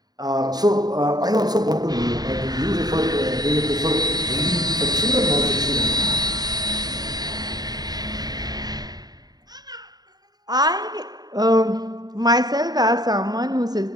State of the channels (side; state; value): left; late; 0.19 ms